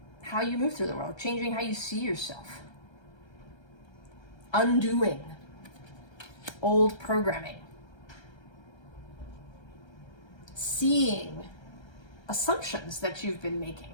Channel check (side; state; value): right; late; 1.3 ms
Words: how you move through the world, changing how you see yourself, undoing old programming, seeing assumptions that you've been making,